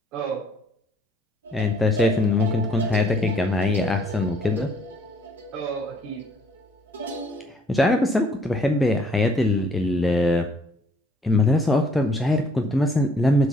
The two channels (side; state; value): both; normal; correlation 0.62